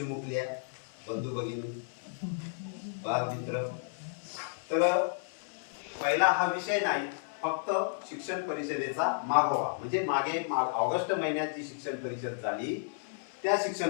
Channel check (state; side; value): silent; right; 56 dB below the other